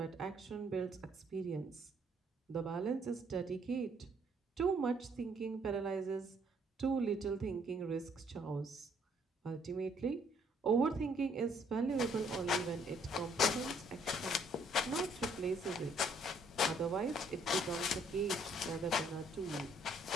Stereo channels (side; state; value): both; normal; correlation 0.65